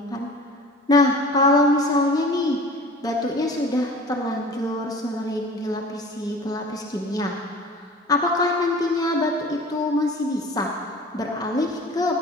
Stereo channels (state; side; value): normal; both; correlation 0.42